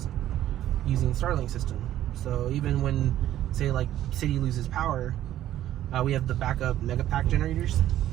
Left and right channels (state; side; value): quieter; left; 12.6 dB